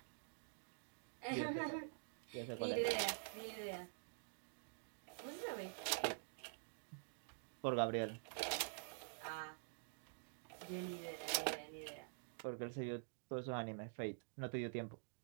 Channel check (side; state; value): left; silent; digital silence